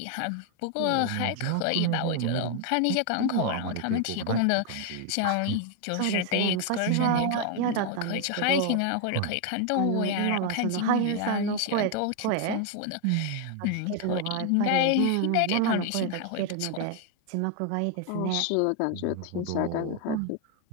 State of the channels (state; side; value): different; both; correlation 0.00